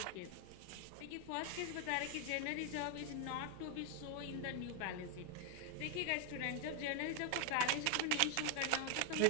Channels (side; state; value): both; different; correlation 0.01